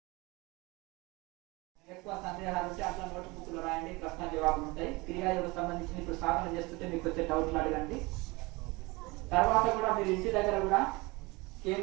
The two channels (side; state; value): left; quieter; 24.1 dB